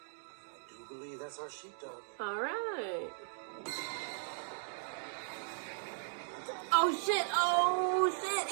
do believe that's our sheepdog. All right. Oh, shit. Oh, shit.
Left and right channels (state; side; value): silent; left; digital silence